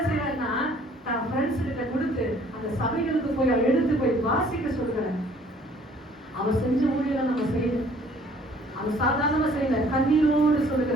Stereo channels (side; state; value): both; normal; correlation 0.57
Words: செய்யறாருன்னா தான் ஃப்ரெண்ட்ஸ் கிட்ட கொடுத்து அந்த சபைகளுக்கு போய் எடுத்து போய் வாசிக்க சொல்கிறார். அவர் செஞ்ச ஊழியரை நம்ம செய்யணும். அவர் சாதாரணமா செய்யல, கண்ணீரோடு